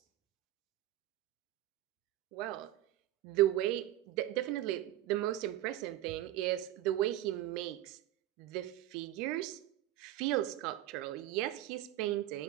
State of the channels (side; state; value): left; quieter; 13.9 dB